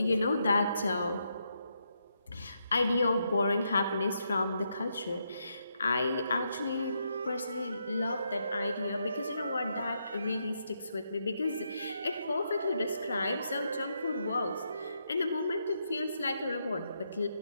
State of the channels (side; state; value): both; inverted; correlation -0.80